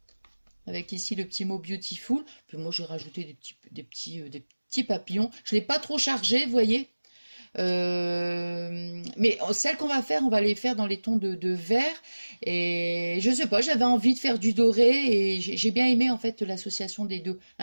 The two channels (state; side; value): inverted; both; correlation -1.00